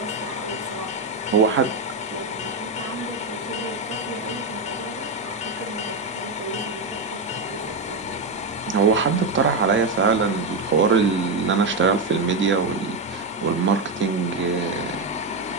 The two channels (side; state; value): left; quieter; 3.3 dB